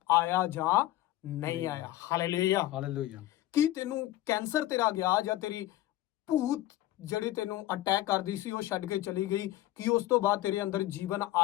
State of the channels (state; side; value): quieter; right; 15.2 dB